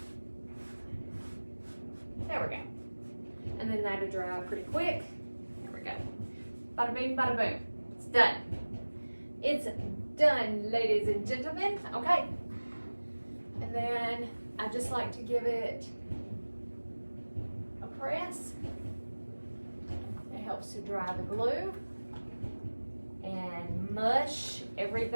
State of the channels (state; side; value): inverted; both; correlation -1.00